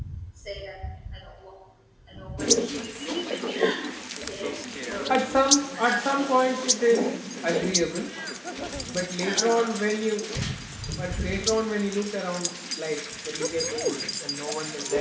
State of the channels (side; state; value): both; identical; correlation 1.00